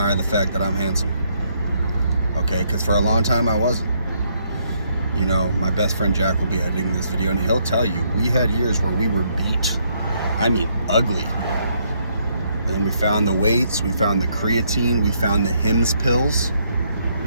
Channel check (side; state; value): both; inverted; correlation -0.72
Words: the fact that I'm handsome. Okay, because for a long time I wasn't. You know, my best friend Jack will be editing this video and he'll tell you we had years where we were beat. I mean, ugly. And then we found the weights, we found the creatine, we found the Hims pills,